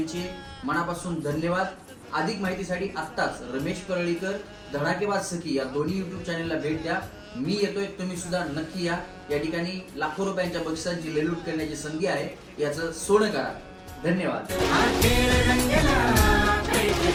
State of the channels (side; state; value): both; identical; correlation 1.00